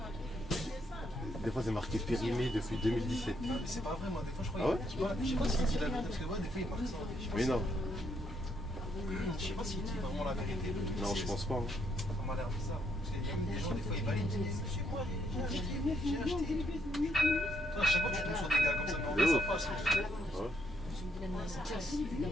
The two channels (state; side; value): normal; both; correlation 0.74